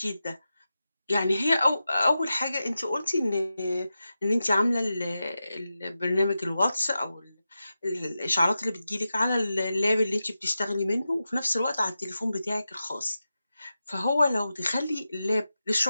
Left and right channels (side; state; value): both; inverted; correlation -0.91